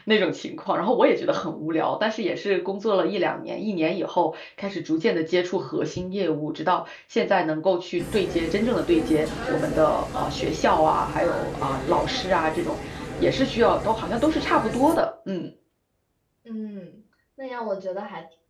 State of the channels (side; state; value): both; identical; correlation 1.00